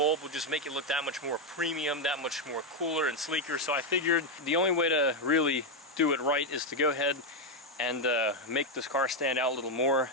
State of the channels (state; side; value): normal; both; correlation 0.04